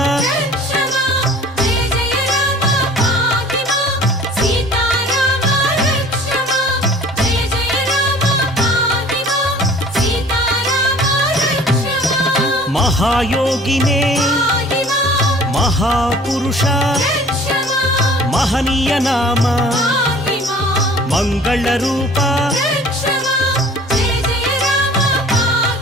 మహాయోగినే మహాపురుష మహనీయ నామ మంగళ రూప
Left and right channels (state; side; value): normal; both; correlation 0.48